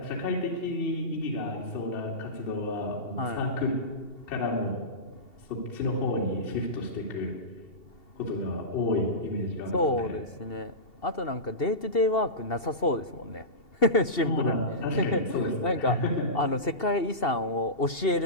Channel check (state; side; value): late; right; 2.7 ms